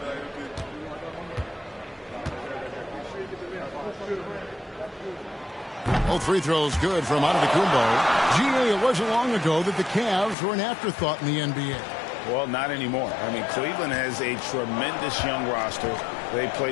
Both free throws good from Antetokounmpo. GA, it wasn't long ago that the Cavs were an afterthought in the NBA. Well, not anymore. I mean, Cleveland has a tremendous young roster. They play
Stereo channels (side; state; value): right; drops out; at 10.4 s